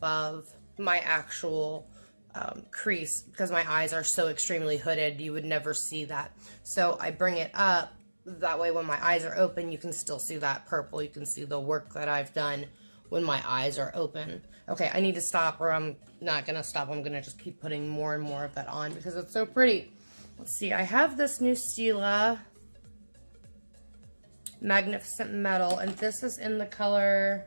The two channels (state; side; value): inverted; both; correlation -1.00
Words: my actual crease, because my eyes are so extremely hooded, you would never see that. So I bring it up, that way when my eyes are open, you can still see that purple. You can see the work that I've done when my eyes are open. Okay, I need to stop, or I'm not gonna stop. I'm gonna just keep putting more and more of that on because it's so pretty. Let's see, I have this new Stila Magnificent Metal, and this is in the